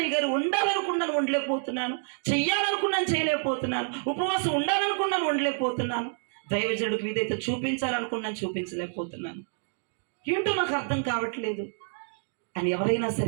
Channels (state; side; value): silent; left; digital silence